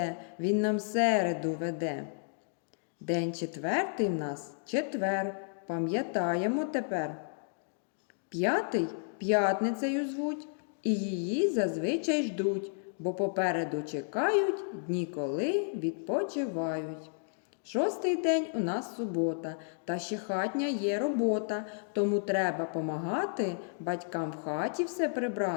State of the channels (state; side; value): silent; right; digital silence